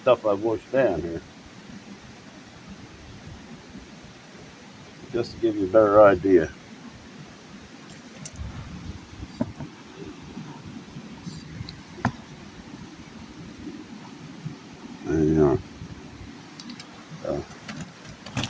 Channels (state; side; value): identical; both; correlation 1.00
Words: I've washed down here, just to give you a better idea. And, uh,